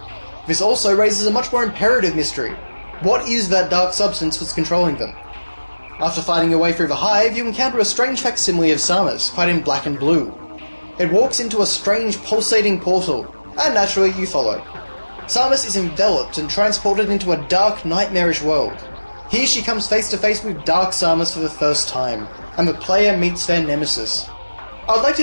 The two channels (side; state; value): both; inverted; correlation -1.00